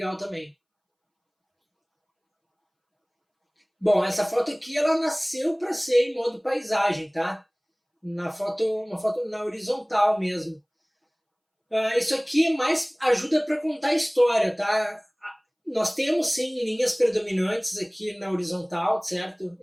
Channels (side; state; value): both; identical; correlation 1.00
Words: também. Bom, essa foto aqui, ela nasceu para ser em modo paisagem, tá? Uma foto na horizontal mesmo. Isso aqui mais ajuda para contar a história, tá? Nós temos sim linhas predominantes aqui na horizontal, certo?